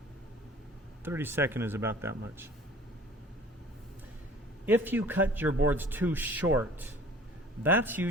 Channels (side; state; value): both; normal; correlation 0.48